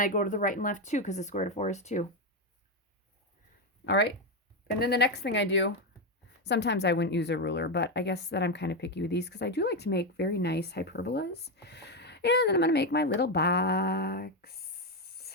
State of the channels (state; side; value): normal; both; correlation 0.08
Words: I go to the right and left 2 because the square root of 4 is 2. All right. And then the next thing I do, sometimes I wouldn't use a ruler, but I guess that I'm kind of picky with these because I do like to make very nice hyperbolas. And then I'm going to make my little